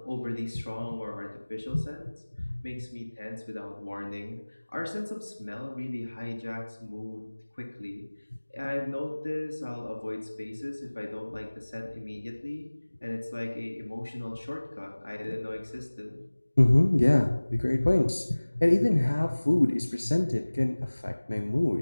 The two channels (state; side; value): inverted; both; correlation -1.00